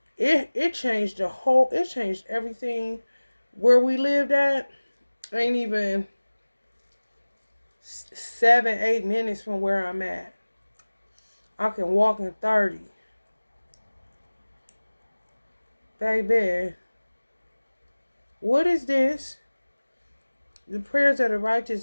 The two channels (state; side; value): inverted; both; correlation -1.00